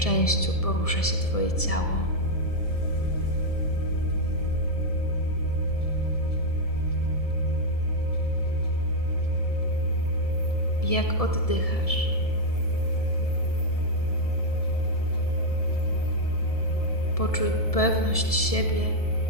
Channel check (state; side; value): late; right; 1.7 ms